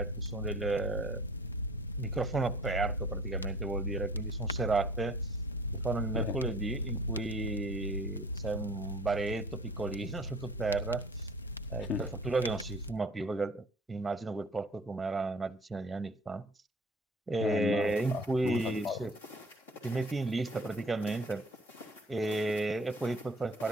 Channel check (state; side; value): normal; both; correlation 0.49